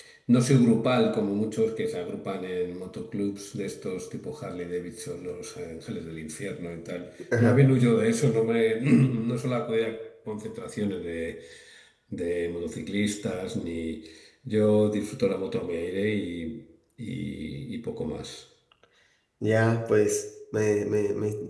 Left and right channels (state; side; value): identical; both; correlation 1.00